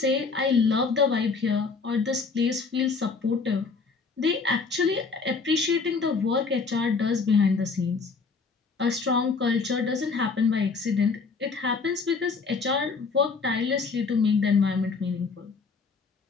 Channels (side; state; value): right; quieter; 4.6 dB